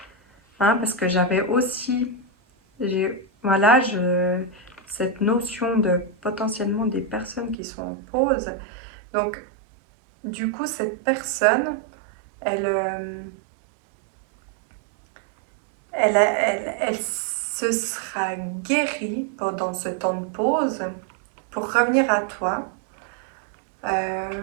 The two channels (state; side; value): drops out; left; at 7.6 s